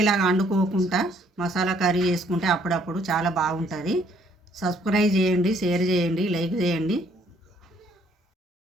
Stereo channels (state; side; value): normal; both; correlation 0.65